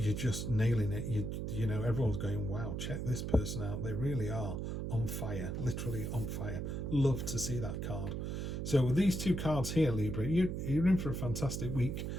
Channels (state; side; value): noise; right; hum, 3 dB below the sound